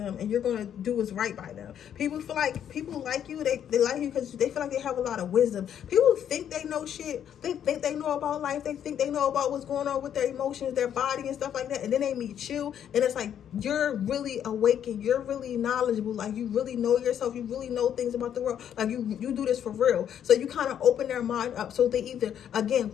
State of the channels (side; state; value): right; quieter; 9.4 dB